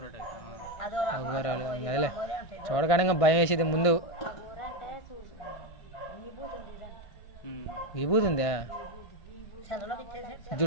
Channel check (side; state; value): right; late; 1.5 ms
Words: అఘోరాలు అదేలే చూడగానే ఇంకా భయం వేసేది ముందు. అంటే చూసి విభూతి ఉంది ఇదంట. విభూతి ఉందా? చదవలో ఇచ్చేసి